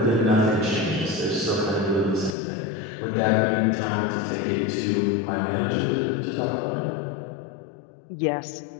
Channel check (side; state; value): right; drops out; at 2.4 s